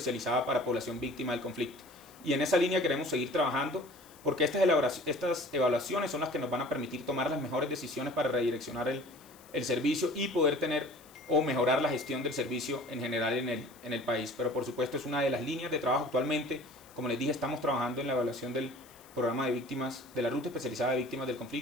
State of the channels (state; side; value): noise; left; hiss, 24 dB below the sound